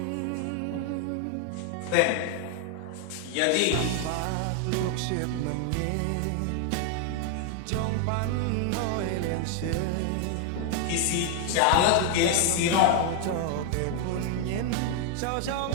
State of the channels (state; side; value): different; both; correlation 0.00